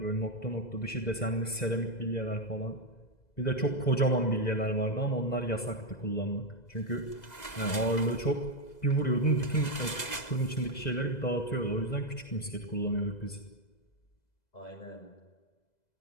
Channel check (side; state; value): right; late; 2.0 ms